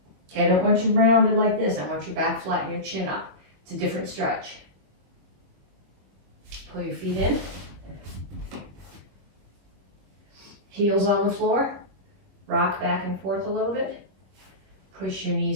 Okay, I don't want you rounded like this. I want your back flat and your chin up. It's a different stretch. Pull your feet in. Heels on the floor. Rock back and forth a little bit. Push your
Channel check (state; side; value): late; left; 21 ms